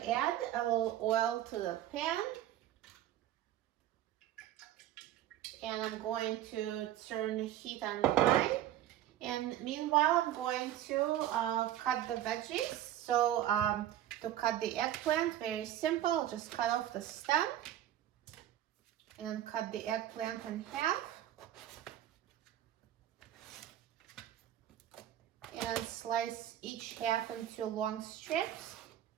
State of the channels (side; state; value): left; quieter; 12.4 dB